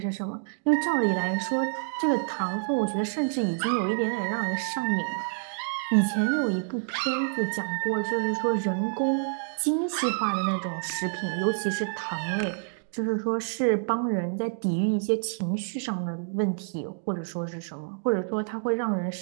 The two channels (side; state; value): left; silent; digital silence